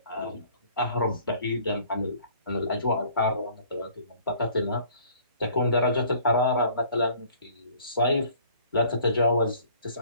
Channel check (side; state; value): both; inverted; correlation -0.55